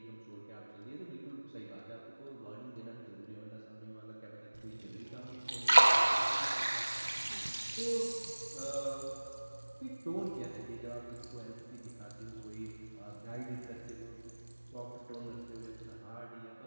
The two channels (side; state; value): both; inverted; correlation -1.00